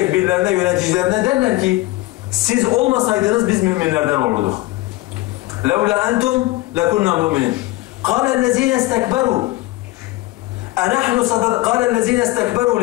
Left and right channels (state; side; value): quieter; right; 19.3 dB